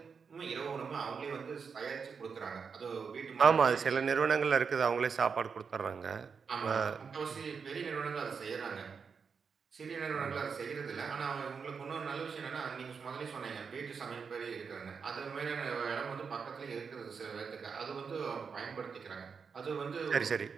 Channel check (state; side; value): quieter; left; 5.8 dB